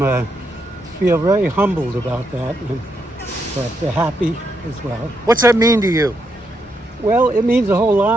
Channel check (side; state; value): both; normal; correlation 0.79